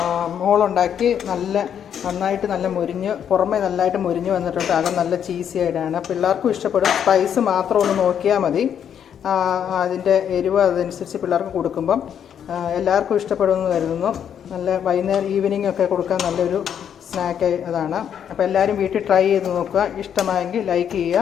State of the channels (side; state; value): right; quieter; 8.7 dB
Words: മോളുണ്ടാക്കി നന്നായിട്ട് നല്ല പുറമെ നല്ലതായിട്ട് മുരിഞ്ഞ് വന്നിട്ടുണ്ട്. അകം നല്ല ചീസി ആയിട്ടാണ്. പിള്ളേർക്കും ഇഷ്ടപ്പെടും. സ്പൈസ് മാത്രം ഒന്ന് നോക്കിയാൽ മതി. അതിൻ്റെ എരിവ് അതനുസരിച്ച് പിള്ളേർക്ക് കൊടുക്കുമ്പം എല്ലാവർക്കും ഇഷ്ടപ്പെടുമെന്ന് കരുതുന്നു. നല്ല വൈകുന്നേരം ഈവനിങ് ഒക്കെ കൊടുക്കാൻ നല്ലൊരു സ്നാക്ക് അതാണ്. അപ്പോൾ എല്ലാവരും വീട്ടിൽ ട്രൈ ചെയ്ത് നോക്കുക. ഇഷ്ടമായെങ്കിൽ ലൈക്ക്